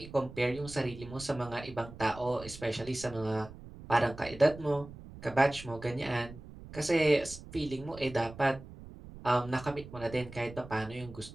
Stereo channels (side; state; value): right; noise; rumble, 15 dB below the sound